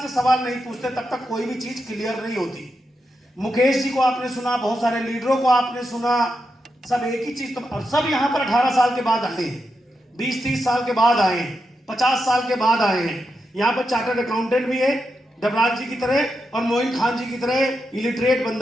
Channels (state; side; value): normal; both; correlation 0.86